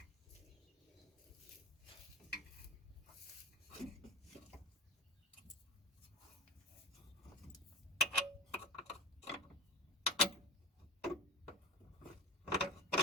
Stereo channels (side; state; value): both; normal; correlation 0.30